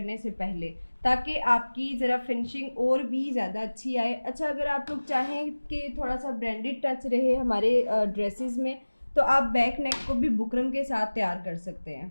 से पहले, ताकि आपकी ज़रा फिनिशिंग और भी ज़्यादा अच्छी आए। अच्छा, अगर आप लोग चाहें कि थोड़ा सा ब्रांडेड टच रहे हमारे ड्रेसेस में, तो आप बैक नेक को भी बुकरम के साथ तैयार कर सकते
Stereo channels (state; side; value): inverted; both; correlation -1.00